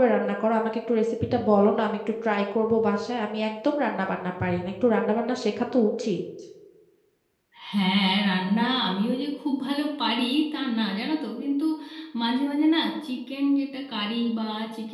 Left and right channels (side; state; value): both; identical; correlation 1.00